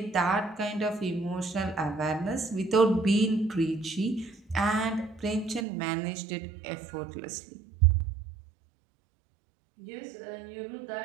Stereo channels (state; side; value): drops out; left; at 5.7 s